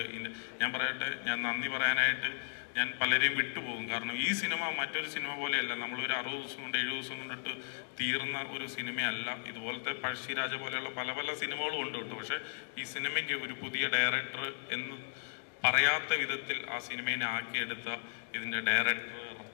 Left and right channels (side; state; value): right; silent; digital silence